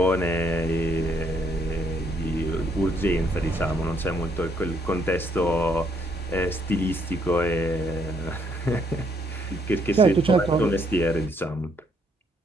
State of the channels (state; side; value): normal; both; correlation 0.70